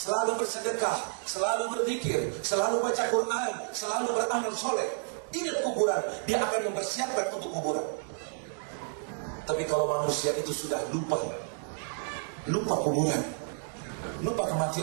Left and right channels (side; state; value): left; silent; 57 dB below the other